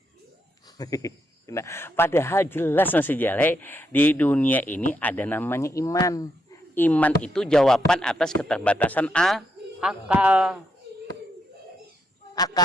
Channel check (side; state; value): both; normal; correlation 0.79